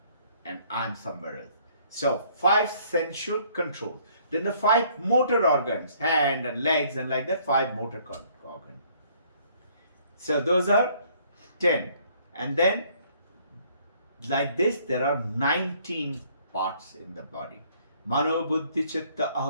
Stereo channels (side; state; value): both; inverted; correlation -0.62